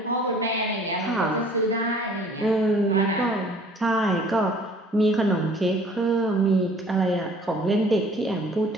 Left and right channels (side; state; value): both; normal; correlation 0.53